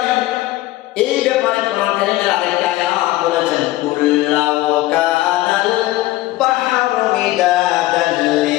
এই ব্যাপারে কোরআন কারীমের আরেকটা আয়াত বলেছেন, কুল্লাউ কানাল বাহরু মিদাদান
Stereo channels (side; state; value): right; quieter; 17.3 dB